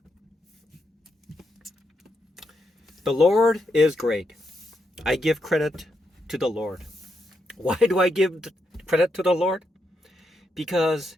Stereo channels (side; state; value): both; normal; correlation 0.82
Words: The Lord is great. I give credit to the Lord. Why do I give credit to the Lord? Because